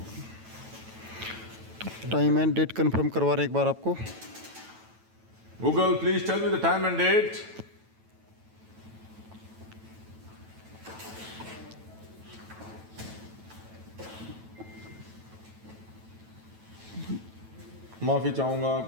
Time and date confirm करवा रहे हैं एक बार आपको। Google, please tell me the time and date. माफी चाहूंगा,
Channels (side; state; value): left; late; 9.1 ms